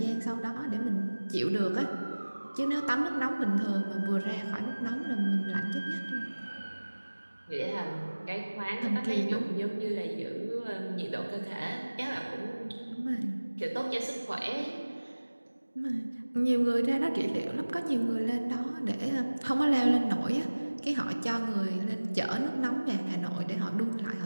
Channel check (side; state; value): both; inverted; correlation -1.00